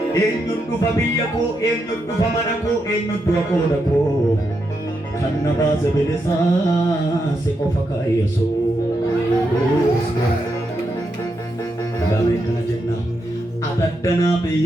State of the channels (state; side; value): normal; both; correlation 0.83